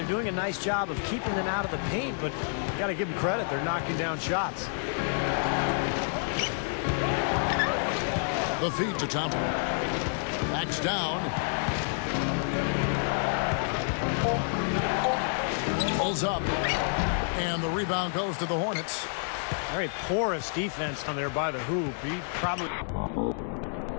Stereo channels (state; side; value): silent; right; digital silence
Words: doing a nice job of keeping them out of the paint, but you got to give them credit. They're knocking down shots. The feed to Thompson. Backs down. Pulls up. And the rebound goes to the Hornets. Very porous defense down there by the hoop. He probably...